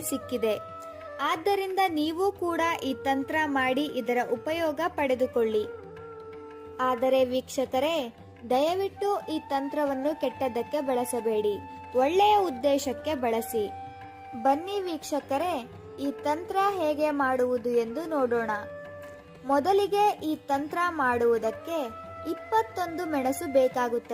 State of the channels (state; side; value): identical; both; correlation 1.00